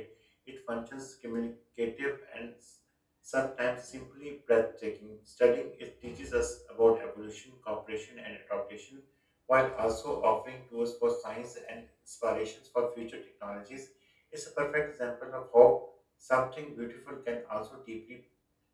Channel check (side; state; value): both; identical; correlation 1.00